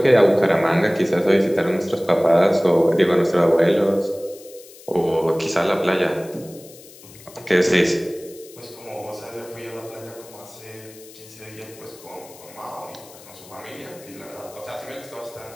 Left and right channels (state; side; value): noise; left; hiss, 21 dB below the sound